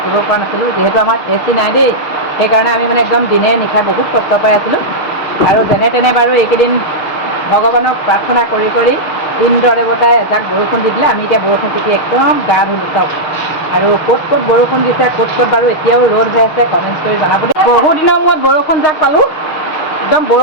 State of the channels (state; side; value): late; right; 6.5 ms